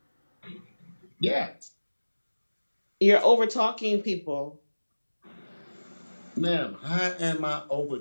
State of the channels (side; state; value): both; inverted; correlation -1.00